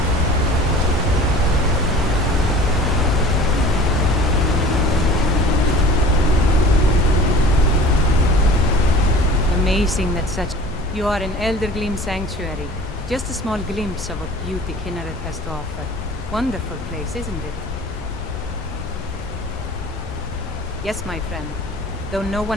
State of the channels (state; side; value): normal; both; correlation 0.44